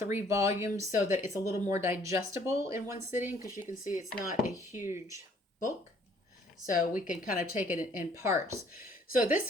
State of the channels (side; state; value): both; normal; correlation 0.61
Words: volumes so that it's a little more digestible in one sitting because you can see it's not a huge book. So we can kind of take it in parts. So